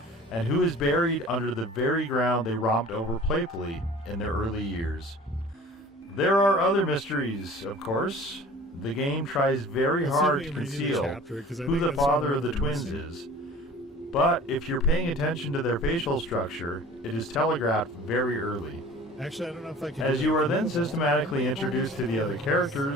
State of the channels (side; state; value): both; normal; correlation 0.44